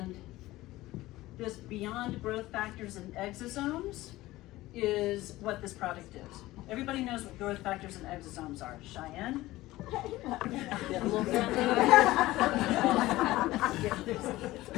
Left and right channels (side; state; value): right; quieter; 17.6 dB